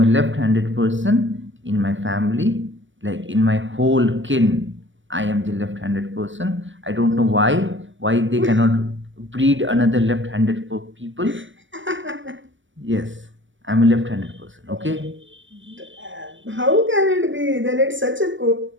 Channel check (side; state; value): left; late; 0.56 ms